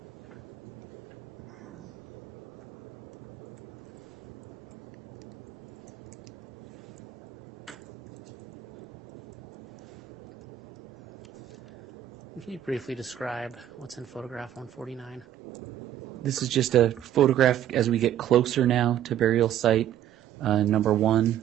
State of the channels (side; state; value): left; quieter; 11.1 dB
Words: Can you briefly describe what's in photograph 149? This is just a photograph as we get closer now to burial site number